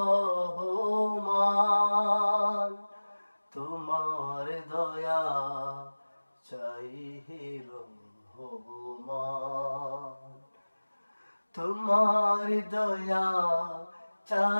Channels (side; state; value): both; inverted; correlation -1.00